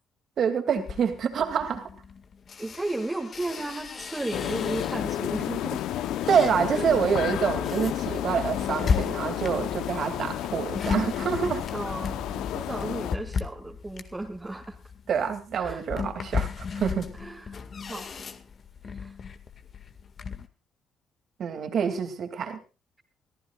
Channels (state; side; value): normal; both; correlation 0.68